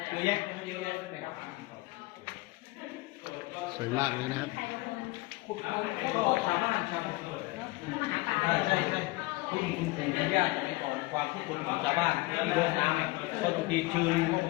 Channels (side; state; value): right; quieter; 22.2 dB